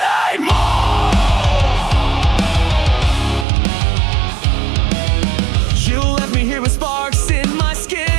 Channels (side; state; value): left; drops out; at 3.5 s